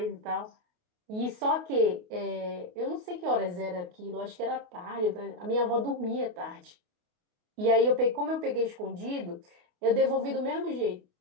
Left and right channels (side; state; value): left; late; 28 ms